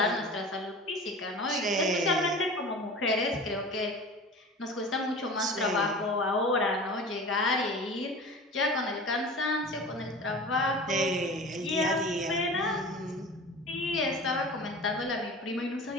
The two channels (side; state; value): both; normal; correlation 0.37